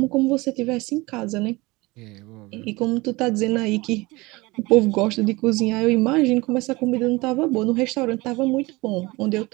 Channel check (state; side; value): quieter; left; 22.6 dB